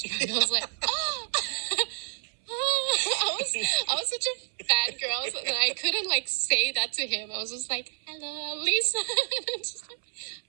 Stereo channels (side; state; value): left; silent; 59 dB below the other